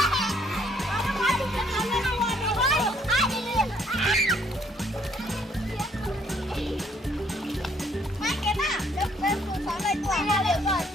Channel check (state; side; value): normal; both; correlation 0.66